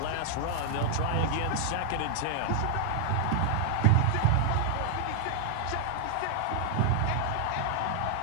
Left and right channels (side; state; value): both; different; correlation 0.00